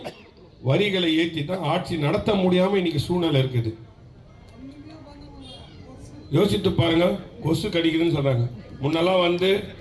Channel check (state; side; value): identical; both; correlation 1.00